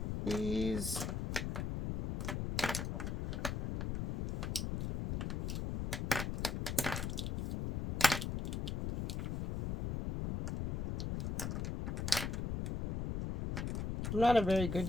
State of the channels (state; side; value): noise; left; rumble, 2 dB below the sound